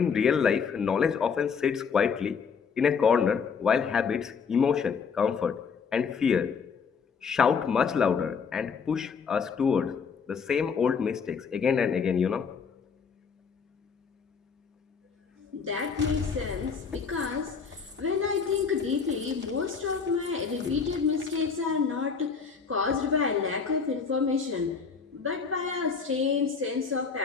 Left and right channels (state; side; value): quieter; right; 5.9 dB